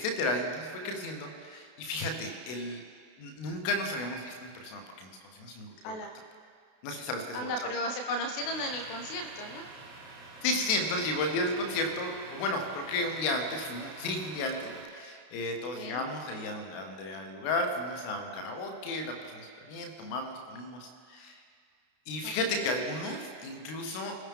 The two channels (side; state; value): right; late; 32 ms